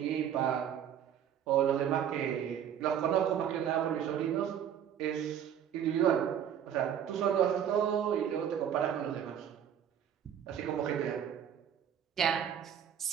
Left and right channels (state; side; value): quieter; left; 9.2 dB